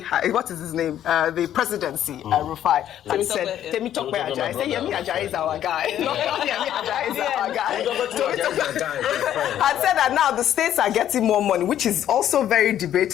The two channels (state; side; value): quieter; right; 11.1 dB